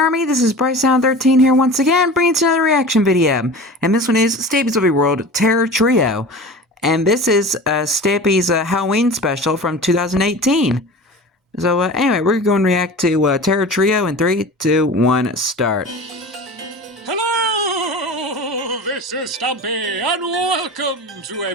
This is BryceAllan13 here once again, bringing to another reaction video. And this one is Stampy's Lovely World Terror Trio. And this is Stampy's Halloween special from 2018. So anyway, we're going to react to Terror Trio in 3, 2, 1, start. Hello, this is Stampy, and welcome to a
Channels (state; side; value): normal; both; correlation 0.35